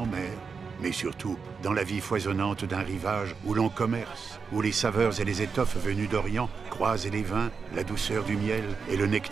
mer, mais surtout dans la vie foisonnante d'un rivage où l'on commerce, où les saveurs et les étoffes venues d'Orient croisent les vins, la douceur du miel et le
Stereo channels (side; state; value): left; quieter; 5.4 dB